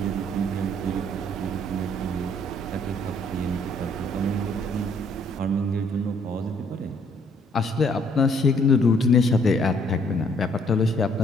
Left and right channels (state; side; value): normal; both; correlation 0.64